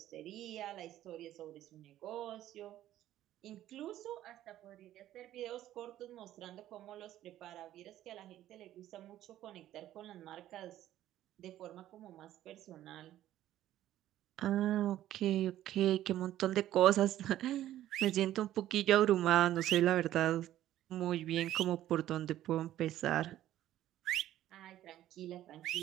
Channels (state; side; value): quieter; left; 13.1 dB